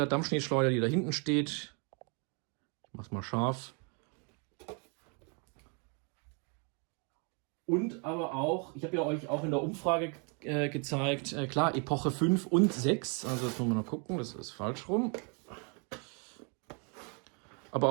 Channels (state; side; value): quieter; left; 36.3 dB